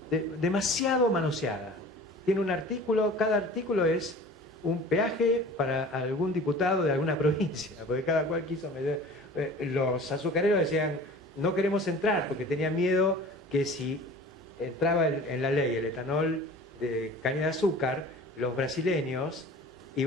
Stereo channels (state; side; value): normal; both; correlation 0.42